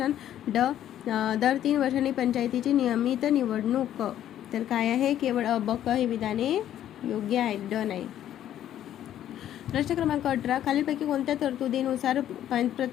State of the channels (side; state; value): right; quieter; 11.4 dB